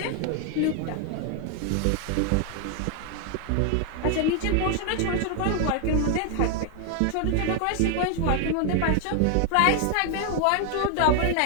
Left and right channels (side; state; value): both; different; correlation 0.00